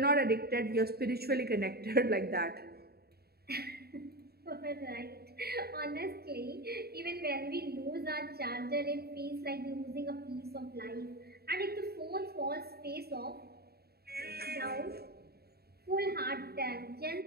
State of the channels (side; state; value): left; late; 0.46 ms